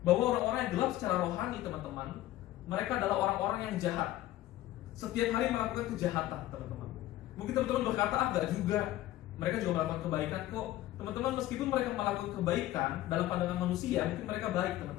bahwa orang-orang yang gelap secara rohani, teman-teman, mereka adalah orang-orang yang jahat. Setiap hari melakukan kejahatan, teman-teman. Mungkin teman-teman berkata, enggak juga. Mereka juga melakukan kebaikan kok. Teman-teman, meskipun mereka melakukan kebaikan dalam pandangan manusia, mungkin mereka baik,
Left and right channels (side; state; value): right; quieter; 14.9 dB